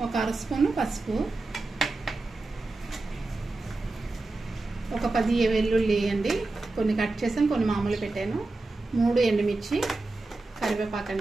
1 అర స్పూను పసుపు, 10 వెల్లుల్లి అండి, కొన్ని కట్ చేసాను, కొన్ని మామూలు పెట్టాను, 3 ఎండుమిర్చి,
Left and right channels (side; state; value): left; quieter; 3.2 dB